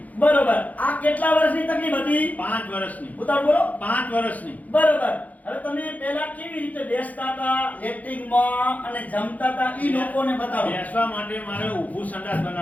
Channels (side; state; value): right; late; 0.077 ms